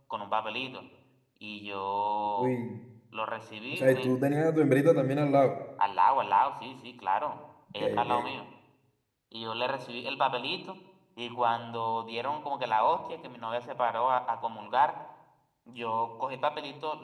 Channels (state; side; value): identical; both; correlation 1.00